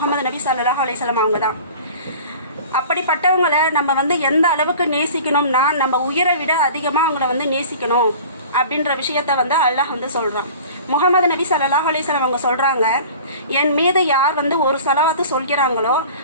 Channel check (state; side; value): inverted; both; correlation -0.42